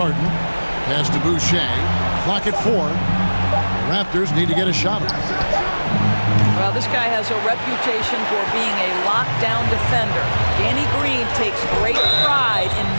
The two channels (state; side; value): inverted; both; correlation -1.00